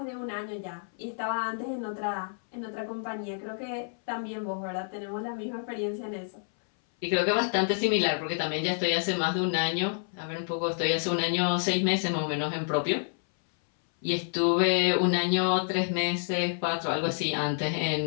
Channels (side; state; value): right; silent; 59 dB below the other